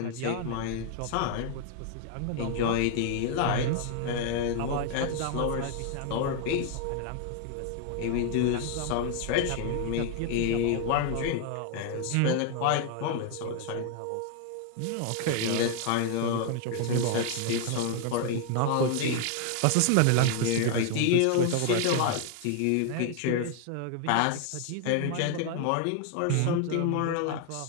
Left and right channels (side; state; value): both; different; correlation 0.00